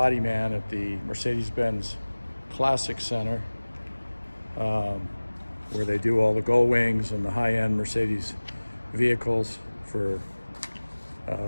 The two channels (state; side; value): inverted; both; correlation -1.00